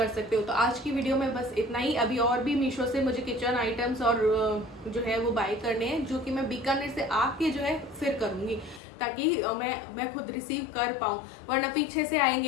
सकते हो। तो आज की वीडियो में बस इतना ही। अभी और भी मीशो से मुझे किचन आइटम्स और जो है वो बाय करने हैं, जो कि मैं बीकानेर से आके जो है फिर करूंगी, ताकि मैं खुद रिसीव कर पाऊँ, वरना पीछे से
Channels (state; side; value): drops out; right; at 8.8 s